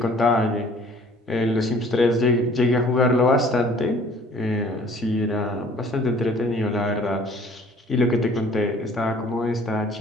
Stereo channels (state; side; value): normal; both; correlation 0.54